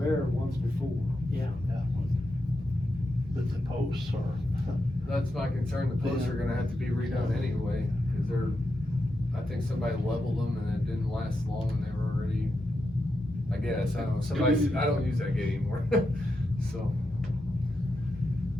once before. yeah. But the posts are, That's my concern, the posts are gonna have to be redone anyway, cause I think somebody leveled them and it didn't last long and they were already, I guess, I don't know, I don't use that gate anymore, so.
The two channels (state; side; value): normal; both; correlation 0.86